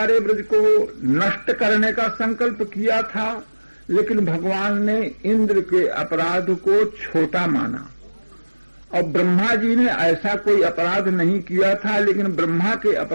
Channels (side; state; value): both; inverted; correlation -1.00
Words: ब्रज को नष्ट करने का संकल्प किया था, लेकिन भगवान ने इंद्र के अपराध को छोटा माना। और ब्रह्मा जी ने ऐसा कोई अपराध नहीं किया था, लेकिन ब्रह्मा के